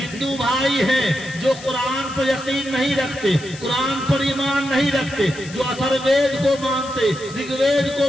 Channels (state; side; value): noise; left; hiss, 17 dB below the sound